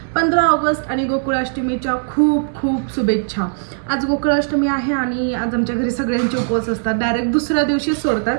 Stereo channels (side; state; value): left; silent; digital silence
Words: 15 ऑगस्ट आणि गोकुळाष्टमीच्या खूप खूप शुभेच्छा। आज गोकुळाष्टमी आहे आणि आज आमच्या घरी सगळ्यांचे उपवास असतात, डायरेक्ट दुसऱ्या दिवशी सोडतात